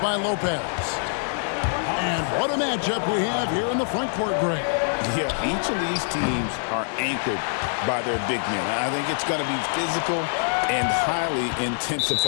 Lopez. And what a matchup we have here in the front court, Greg. Yeah, each of these teams are anchored by their big men. I think it's going to be physical and highly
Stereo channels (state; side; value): silent; right; digital silence